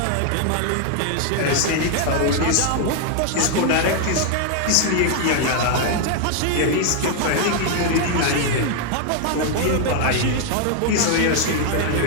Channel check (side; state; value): both; different; correlation 0.00